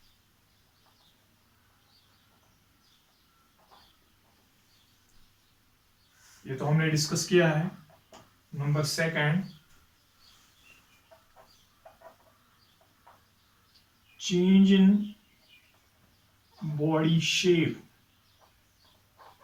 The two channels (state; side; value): identical; both; correlation 1.00